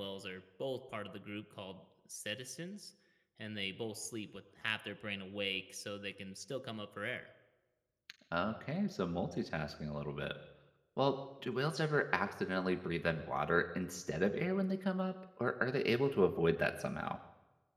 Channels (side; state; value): both; identical; correlation 1.00